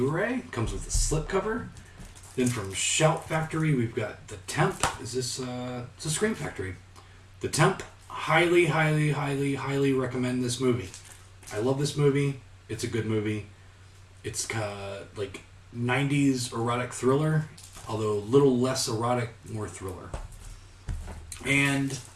Comes with a slipcover. Then from Shout Factory, we've got The Temp. It's a Scream Factory. The Temp. Highly, highly, highly, highly recommend this movie. I love this movie. It's a good movie. It's like 90s erotic thriller, although a little less erotic, more thriller. And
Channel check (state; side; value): identical; both; correlation 1.00